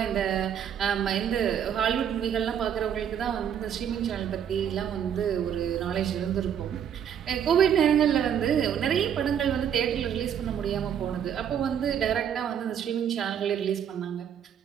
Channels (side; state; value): left; quieter; 8.8 dB